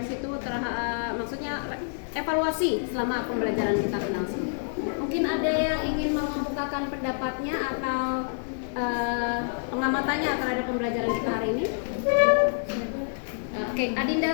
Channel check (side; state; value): right; silent; 60 dB below the other